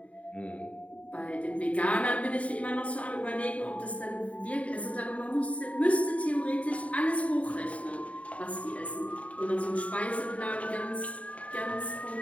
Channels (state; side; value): late; right; 0.067 ms